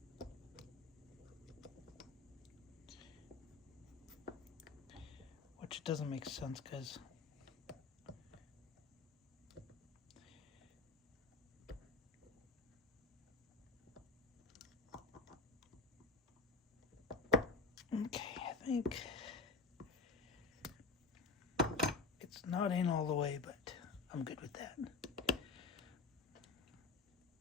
Which doesn't make sense because okay, I think it's not in all the way, but I'm good with that.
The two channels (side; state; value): right; quieter; 4.1 dB